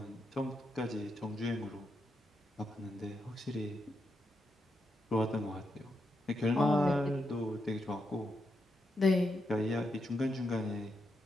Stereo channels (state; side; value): normal; both; correlation 0.83